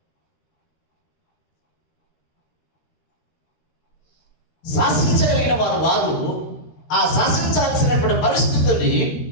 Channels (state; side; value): late; right; 13 ms